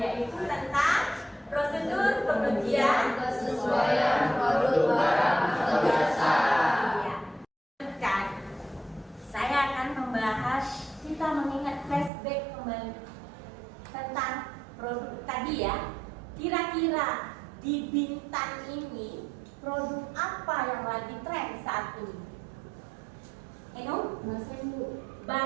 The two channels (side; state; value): left; drops out; at 12.1 s